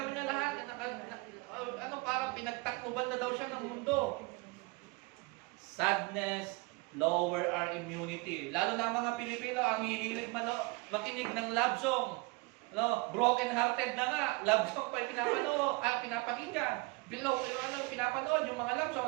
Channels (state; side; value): quieter; left; 26.0 dB